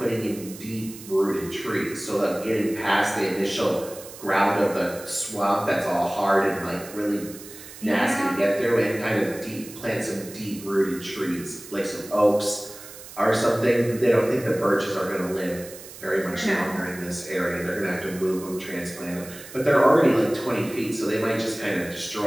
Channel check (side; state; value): right; noise; hiss, 16 dB below the sound